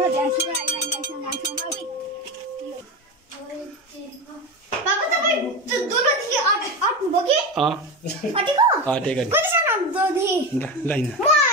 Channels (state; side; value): normal; both; correlation 0.21